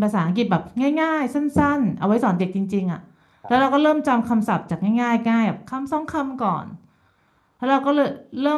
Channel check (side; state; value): both; identical; correlation 1.00